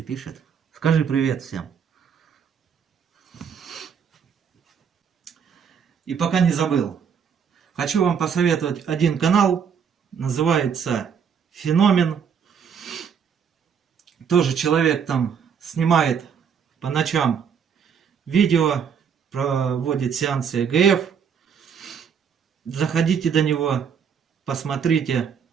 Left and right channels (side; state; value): left; quieter; 7.1 dB